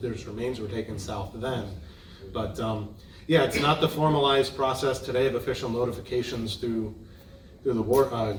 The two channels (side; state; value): both; identical; correlation 1.00